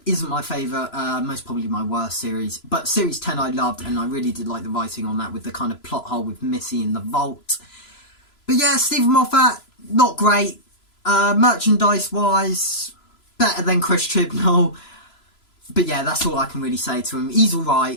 isn't my favourite, most probably my worst series. But Series 10 I loved, and I really did like the writing on that with the kind of plot hole with Missy in the vault. But yeah, Stephen Moffat, not great. Merchandise-wise, better than Chris Chibnall. But yeah, that's all I can really say to him. He's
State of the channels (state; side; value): late; right; 3.0 ms